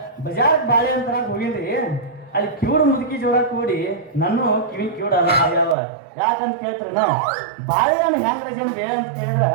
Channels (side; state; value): left; drops out; at 5.8 s